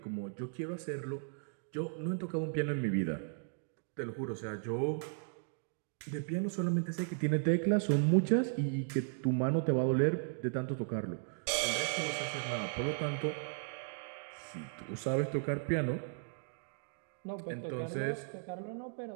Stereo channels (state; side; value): silent; left; digital silence